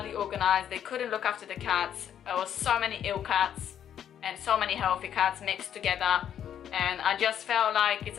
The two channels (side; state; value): right; quieter; 9.6 dB